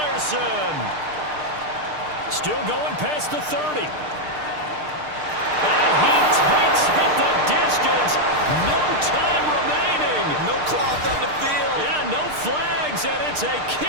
Still going past the 30. And he takes it the distance. No time remaining. no cloth on the field. Yeah, no flags, and it's a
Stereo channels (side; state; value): left; late; 6.6 ms